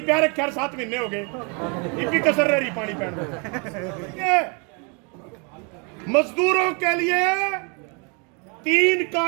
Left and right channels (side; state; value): left; quieter; 34.2 dB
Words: रखा 7 महीने हो गए, ये भी कसर रह रही पानी पीने। मजदूरों के लिए 3